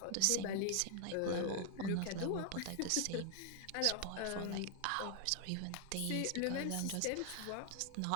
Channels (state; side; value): different; both; correlation 0.00